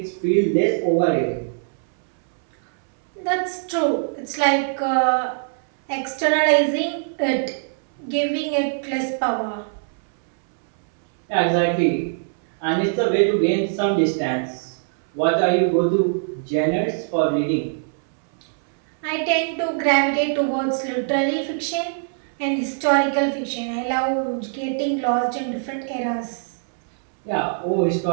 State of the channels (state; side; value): silent; left; 64 dB below the other